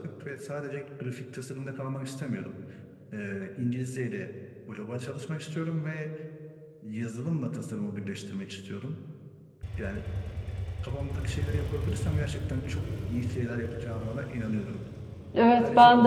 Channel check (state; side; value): identical; both; correlation 1.00